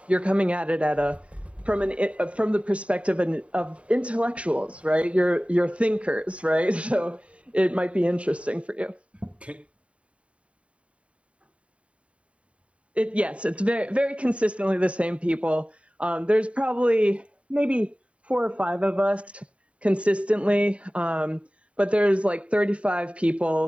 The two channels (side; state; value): left; late; 0.063 ms